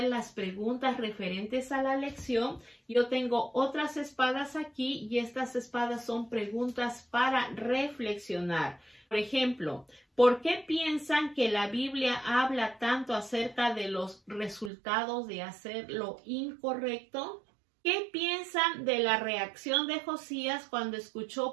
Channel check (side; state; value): left; drops out; at 14.7 s